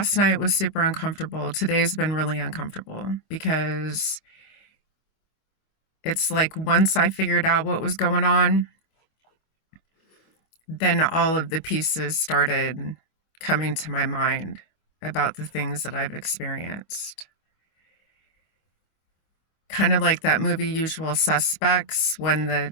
night was super uncomfortable. Today's been really uncomfortable because it's like once I figured out what was going on, then all of the pieces started coming to my mind about the things that I've experienced. Kind of like that movie Usual Suspects, when the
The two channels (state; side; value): late; right; 25 ms